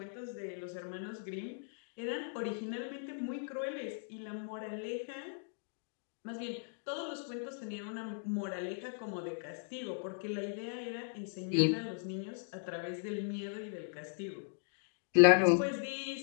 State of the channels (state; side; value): silent; right; digital silence